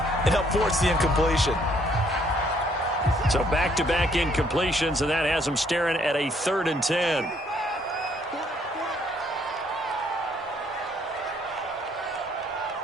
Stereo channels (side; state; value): both; normal; correlation 0.66